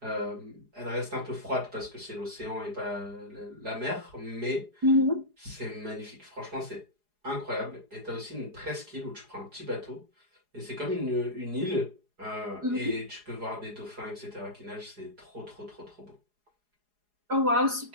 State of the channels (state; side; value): late; left; 4.8 ms